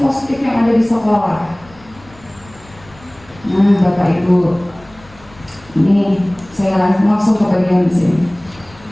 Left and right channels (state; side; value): noise; left; rumble, 24 dB below the sound